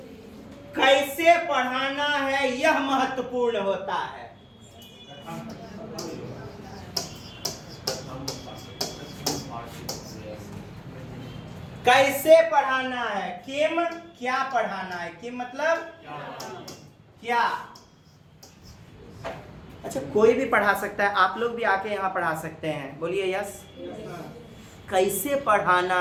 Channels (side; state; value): both; identical; correlation 1.00